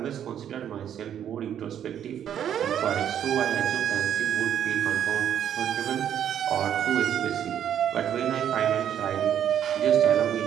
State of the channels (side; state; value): left; quieter; 9.7 dB